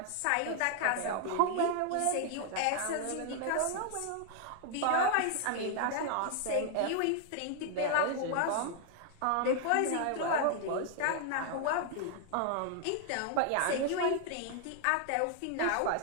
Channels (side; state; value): both; different; correlation 0.00